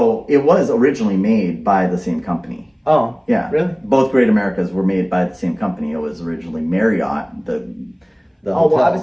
was originally made by the same company. Oh. Yeah. Really? Both Great Americas were made by the same company. It was originally Marriott, the Oh well, I hotel was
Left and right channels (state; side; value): identical; both; correlation 1.00